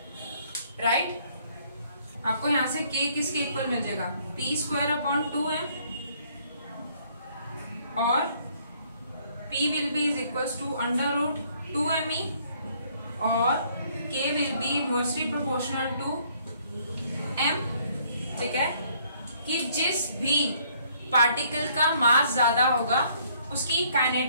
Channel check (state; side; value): inverted; both; correlation -0.64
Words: right. आपको यहां से k किसके इक्वल मिल जाएगा, p²/2m, और p will be is equal to √2me और k will be inversely proportional to m। ठीक है, कि जिस भी पार्टिकल का मास ज्यादा होगा उसकी